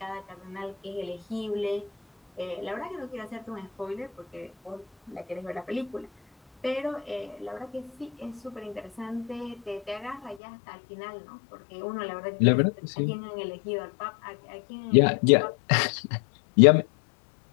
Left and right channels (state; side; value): drops out; right; at 10.4 s